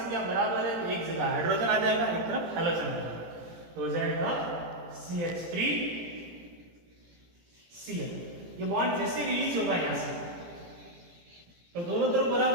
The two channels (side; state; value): left; late; 18 ms